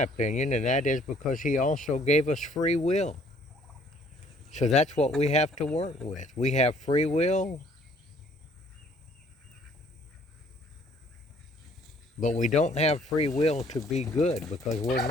opinion, and that is because he also gave us free will. So that's what we have to work with. We have free will, but we don't have free will to be good because we're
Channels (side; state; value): both; normal; correlation 0.60